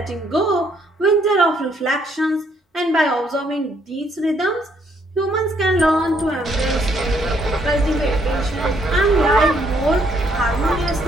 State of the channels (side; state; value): both; normal; correlation 0.70